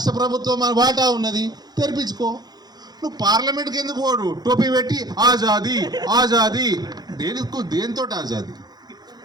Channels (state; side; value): late; left; 0.19 ms